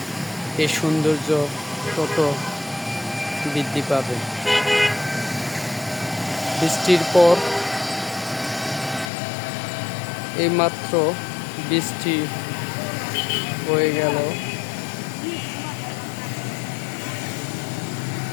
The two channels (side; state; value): right; drops out; at 9.1 s